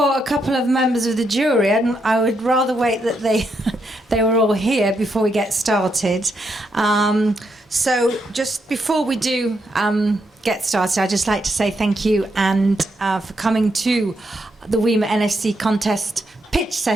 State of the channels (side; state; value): both; normal; correlation 0.80